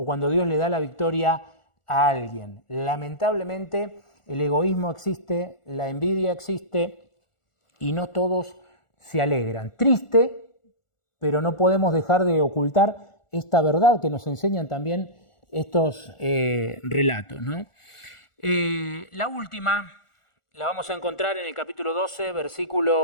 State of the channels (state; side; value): late; right; 1.4 ms